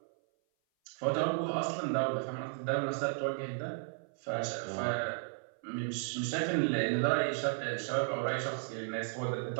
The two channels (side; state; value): left; silent; 55 dB below the other